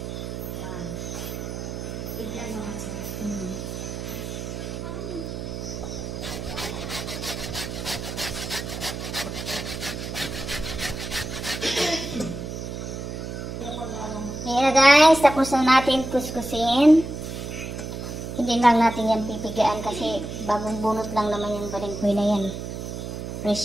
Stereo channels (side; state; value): right; noise; hum, 6 dB below the sound